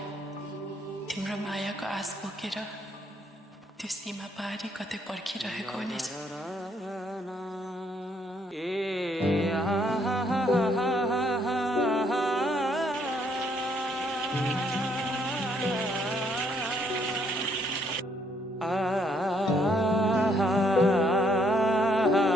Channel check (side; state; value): both; normal; correlation 0.69